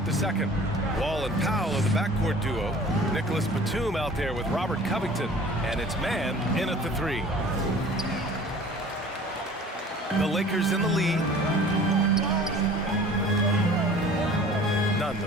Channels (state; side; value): normal; both; correlation 0.46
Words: the second. Wall and Powell are the backcourt duo. Nicholas Batum out there with Robert Covington. And it's Man in at the 3. The Lakers in the lead. Nunn, the